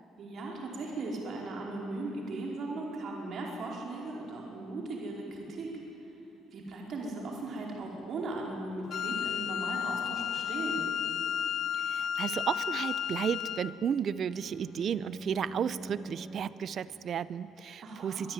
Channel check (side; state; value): both; normal; correlation 0.66